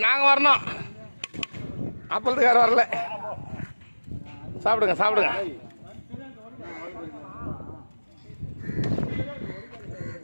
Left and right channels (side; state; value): both; inverted; correlation -1.00